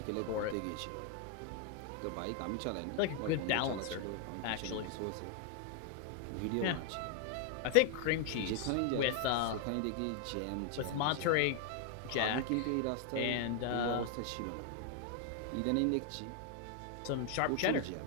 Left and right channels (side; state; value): both; different; correlation 0.00